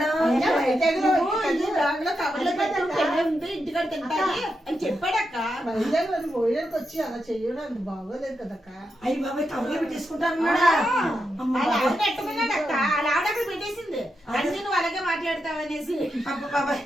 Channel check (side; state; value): both; normal; correlation 0.86